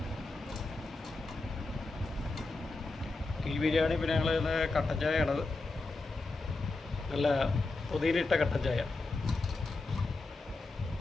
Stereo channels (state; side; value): quieter; right; 3.3 dB